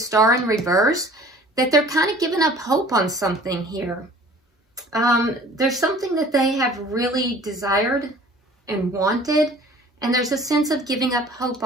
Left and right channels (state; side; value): normal; both; correlation 0.48